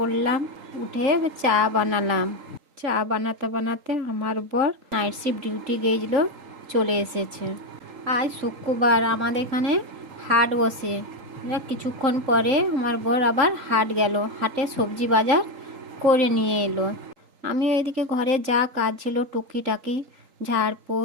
উঠে চা বানালাম। চা বানাতে বানাতে আমার বর নাইট শিফট ডিউটি গিয়েছিল, চলে এসেছে। আজ শুক্রবার, আমাদের এখানে হাট বসে। কিছুক্ষণ পরে আমার বর আবার হাট গেল, হাটে সবজি বাজার করে নিয়ে এলো। আমি এদিকে ঘরে যা কাজ ছিল টুকিটাকি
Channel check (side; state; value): left; late; 3.8 ms